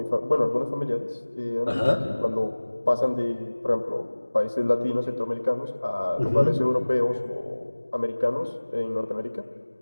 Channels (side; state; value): both; inverted; correlation -1.00